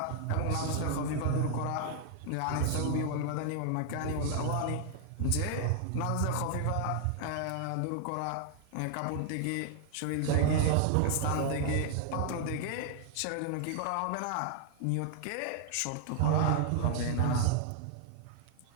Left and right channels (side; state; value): both; different; correlation 0.00